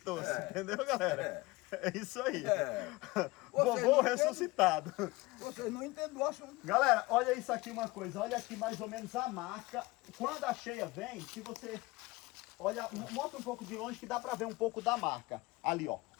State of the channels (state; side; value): quieter; right; 21.6 dB